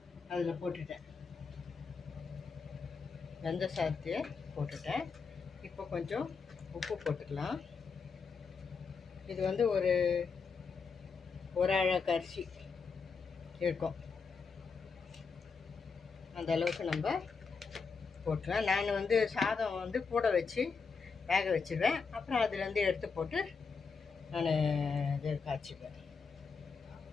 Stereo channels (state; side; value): quieter; right; 5.2 dB